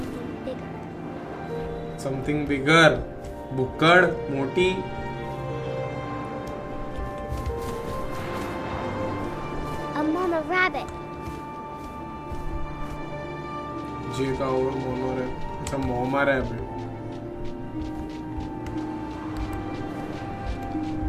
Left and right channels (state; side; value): identical; both; correlation 1.00